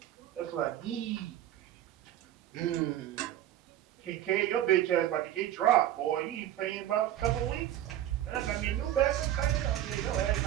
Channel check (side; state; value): left; quieter; 12.4 dB